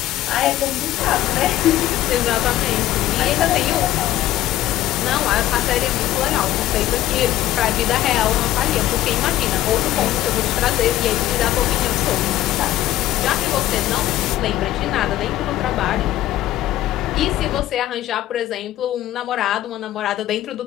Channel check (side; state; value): right; quieter; 14.0 dB